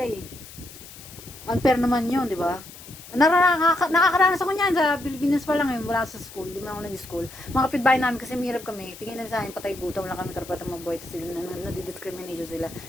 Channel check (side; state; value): left; noise; hiss, 17 dB below the sound